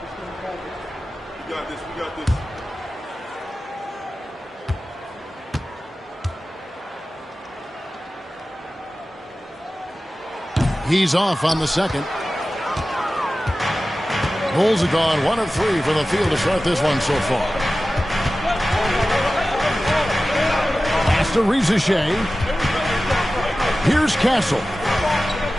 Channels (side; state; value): both; normal; correlation 0.95